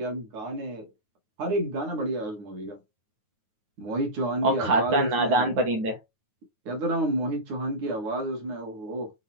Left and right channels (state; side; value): late; left; 9.4 ms